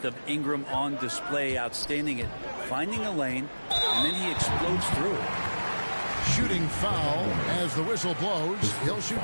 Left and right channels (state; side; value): inverted; both; correlation -1.00